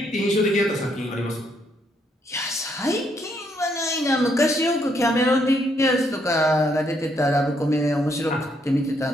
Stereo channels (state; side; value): normal; both; correlation 0.73